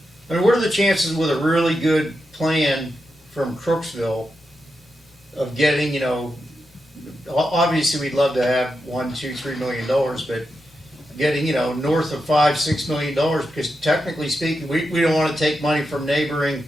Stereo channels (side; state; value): both; normal; correlation 0.87